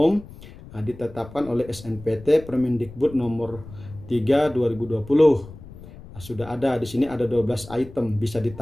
ditetapkan oleh SNPT Permendikbud nomor 3 2020. Sudah ada di sini, ada 12 item, bisa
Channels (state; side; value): noise; left; rumble, 17 dB below the sound